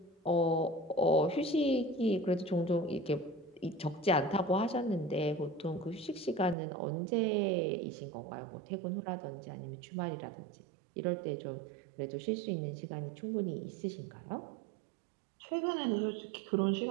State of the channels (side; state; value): left; drops out; at 6.6 s